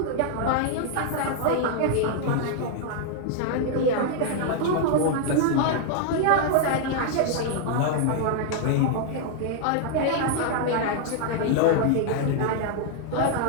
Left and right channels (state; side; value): different; both; correlation 0.00